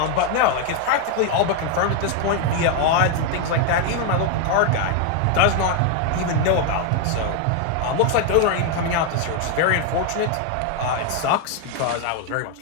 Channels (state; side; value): different; both; correlation 0.00